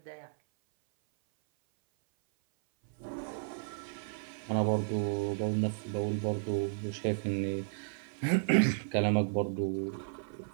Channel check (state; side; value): silent; left; 56 dB below the other